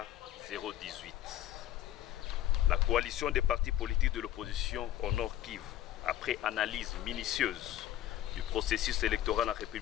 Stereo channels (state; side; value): quieter; right; 12.8 dB